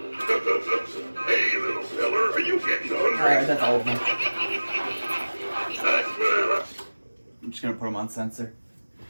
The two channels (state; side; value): inverted; both; correlation -1.00